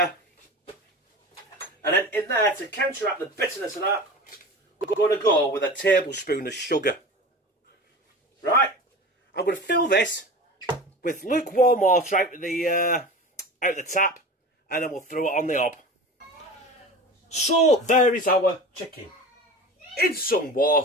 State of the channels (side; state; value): both; normal; correlation 0.33